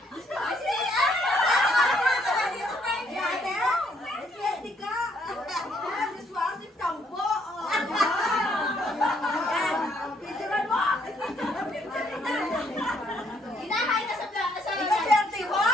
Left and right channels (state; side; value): normal; both; correlation 0.69